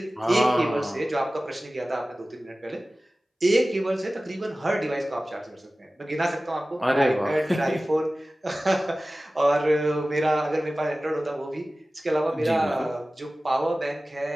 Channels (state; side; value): normal; both; correlation 0.97